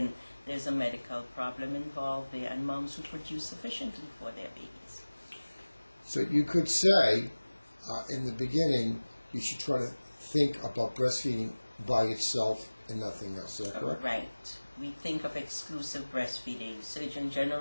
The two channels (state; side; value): inverted; both; correlation -1.00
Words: there's a medical problem involved there, and moms who produce sufficiently for their babies. So you could say, in the beginning, you should try to think about breastfeeding by itself and nothing else. Is that correct? Right. We think of exclusive breastfeeding. Surgeon